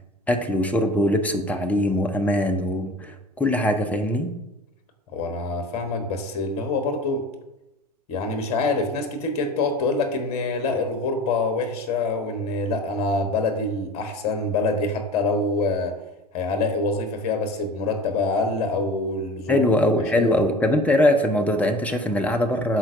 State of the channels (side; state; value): both; normal; correlation 0.40